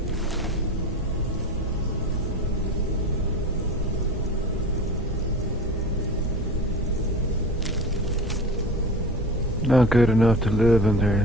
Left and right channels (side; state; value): both; normal; correlation 0.33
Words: Not good enough to live under